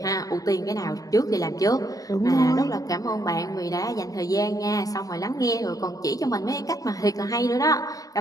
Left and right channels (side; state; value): right; late; 0.17 ms